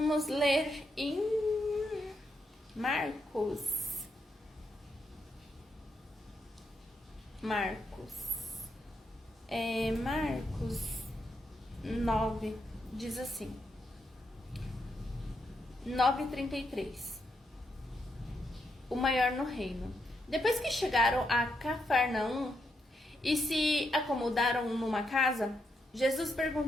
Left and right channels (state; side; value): normal; both; correlation 0.81